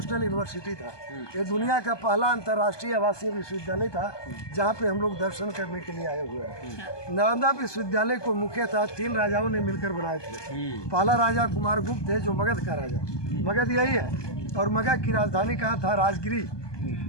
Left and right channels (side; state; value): right; late; 1.2 ms